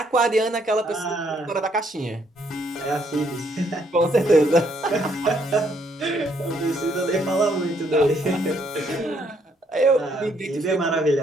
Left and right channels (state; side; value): normal; both; correlation 0.70